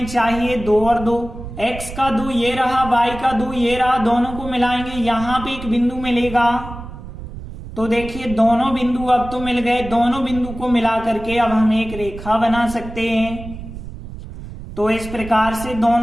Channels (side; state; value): right; noise; rumble, 12 dB below the sound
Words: चाहिए 2 और 2, x का 2 ये रहा, y का 2 ये रहा, दोनों को मिलाएंगे यहाँ पे एक बिंदु मिलेगा। तो देखिए दोनों बिंदु अब तो मिल गए, दोनों बिंदु को मिला करके अब हम एक रेखा बना सकते हैं। तो इस प्रकार से